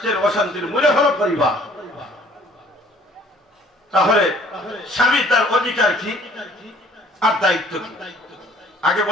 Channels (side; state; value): both; normal; correlation 0.55